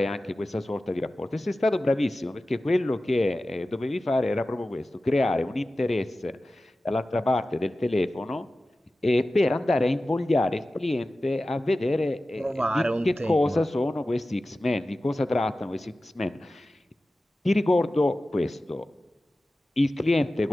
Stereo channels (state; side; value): normal; both; correlation 0.95